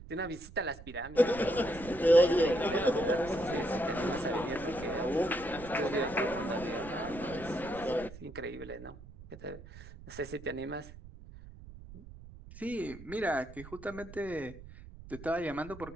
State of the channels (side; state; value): right; noise; rumble, 16 dB below the sound